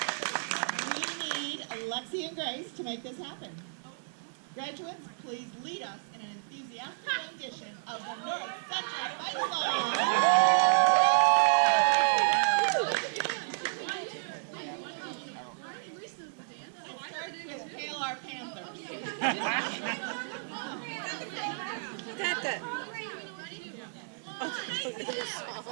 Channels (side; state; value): left; silent; digital silence